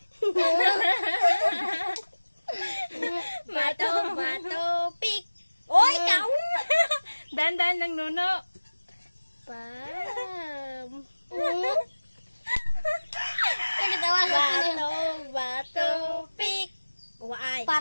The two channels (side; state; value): both; inverted; correlation -1.00